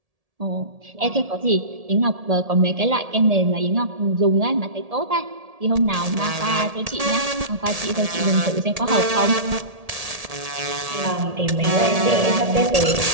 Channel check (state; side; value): late; left; 1.8 ms